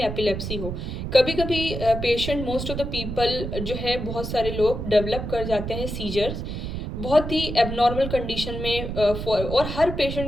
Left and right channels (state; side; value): noise; right; rumble, 5 dB below the sound